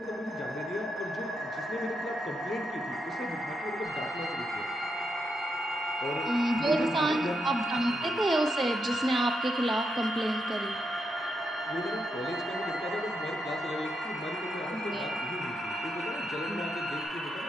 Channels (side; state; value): both; normal; correlation 0.82